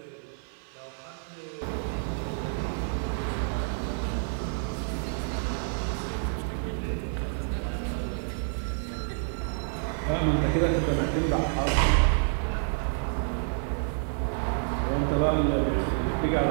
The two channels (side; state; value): left; silent; digital silence